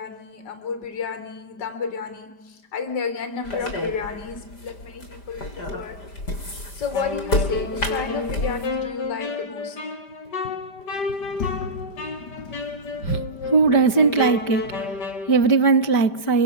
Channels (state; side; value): late; right; 5.1 ms